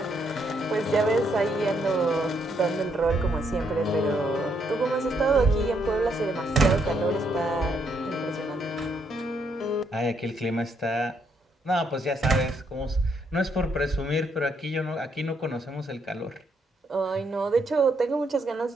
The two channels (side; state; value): both; normal; correlation 0.74